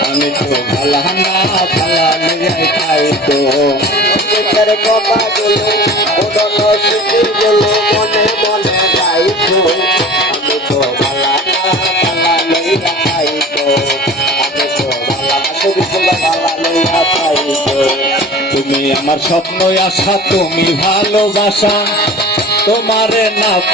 আমি তো ভালা না ভালা লইয়া খাইতো। অতীতের কথাগুলো পুরনো স্মৃতিগুলো মনে মনে রাখো। আমি তো ভালা না ভালা লইয়া খাইতো। তুমি আমার স্বপ্ন আশা, তুমি ভালোবাসা, তোমারে না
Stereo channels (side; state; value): both; normal; correlation 0.41